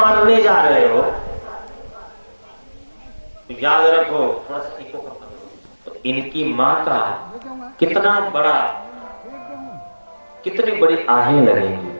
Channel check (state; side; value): inverted; both; correlation -1.00